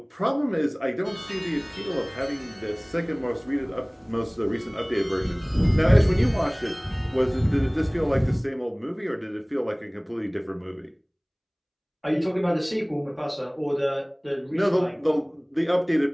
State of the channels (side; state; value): both; identical; correlation 1.00